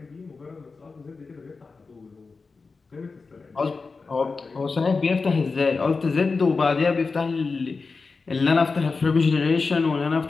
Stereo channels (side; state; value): right; quieter; 4.3 dB